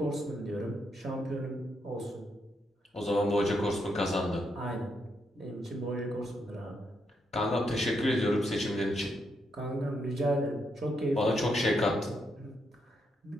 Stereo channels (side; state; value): both; normal; correlation 0.79